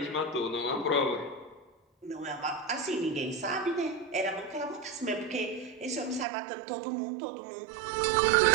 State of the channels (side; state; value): left; drops out; at 6.2 s